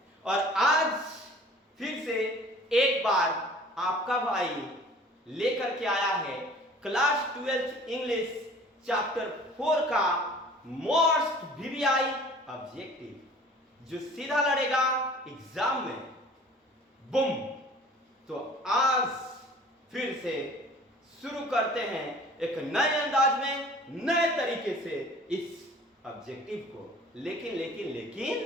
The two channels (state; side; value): normal; both; correlation 0.48